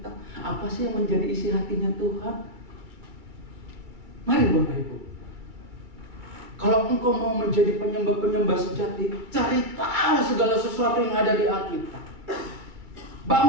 apa sih yang menjadi isi hatinya Tuhan? Mari Bapak Ibu, kalau engkau mau menjadi penyembah-penyembah sejati, cari tahu segala sesuatu yang ada di Alkitab.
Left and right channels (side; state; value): left; late; 2.2 ms